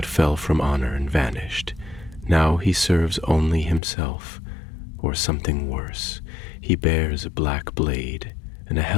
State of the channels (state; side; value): drops out; right; at 3.8 s